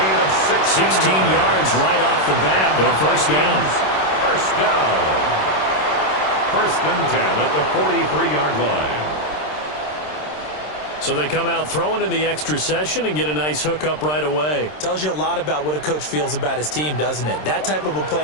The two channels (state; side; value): late; right; 26 ms